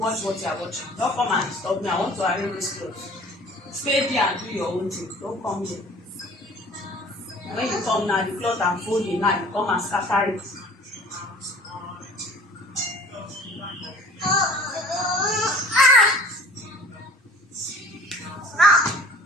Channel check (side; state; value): both; normal; correlation 0.48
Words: what you are watching. Don't come and stop me. I want to arrange this clothes. Stay there and do your own thing. Don't come here. When you come now, the cloth I'm folding now, you come and scatter it.